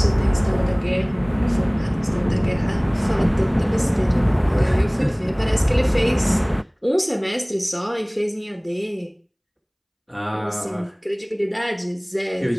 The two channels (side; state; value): both; identical; correlation 1.00